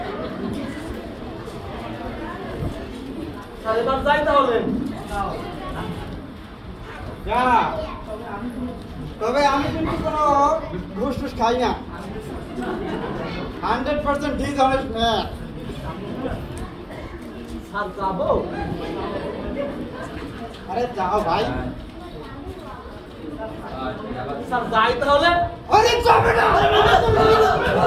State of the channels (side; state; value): both; identical; correlation 1.00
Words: স্যার এবার যাই তাহলে। যা তবে আমি কিন্তু কোনো ঘুষ টুস খাই না, 100% ডিসঅনেস্ট ম্যান। স্যার যাবো? আরে যাও ভাই। স্যার যাই তাহলে। আরে যাবে না